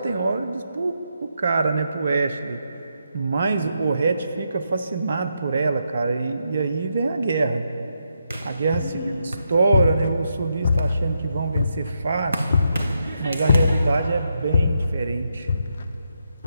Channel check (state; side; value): inverted; both; correlation -0.82